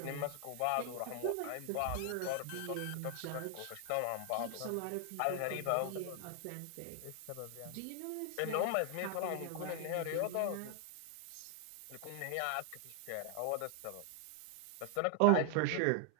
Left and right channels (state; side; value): different; both; correlation 0.00